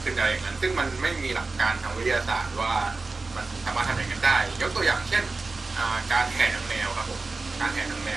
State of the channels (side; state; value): left; quieter; 3.7 dB